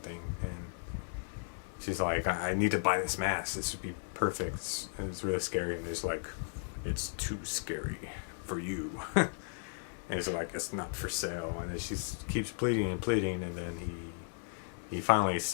thing. And she's like, I need to buy this mask. This would be perfect. And it's really scary. And it's like, it's too scary for you. And it's like, it's not for sale. And then she keeps pleading and pleading. And then he finally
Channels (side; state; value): right; silent; 54 dB below the other